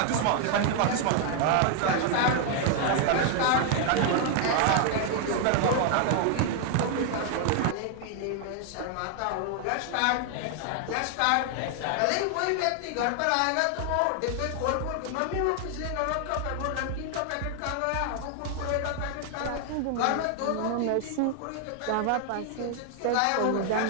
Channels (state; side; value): different; both; correlation 0.00